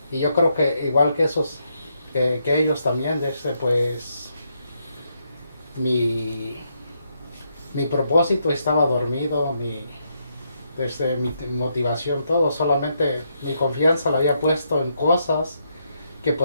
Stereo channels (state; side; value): inverted; both; correlation -0.78